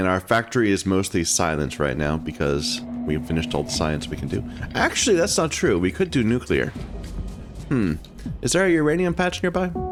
our factory is mostly silent right now because we've finished all the science we can do. Actually, that's not true. We could do nuclear. Is there a uranium patch nearby?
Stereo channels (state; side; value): identical; both; correlation 1.00